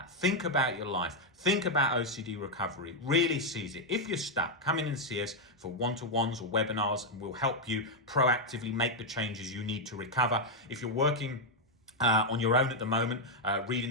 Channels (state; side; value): normal; both; correlation 0.00